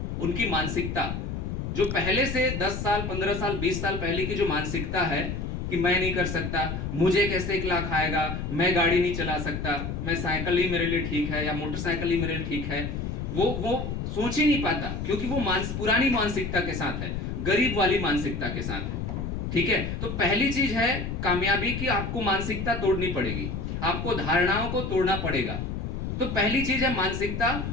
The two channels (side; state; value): left; noise; rumble, 4 dB below the sound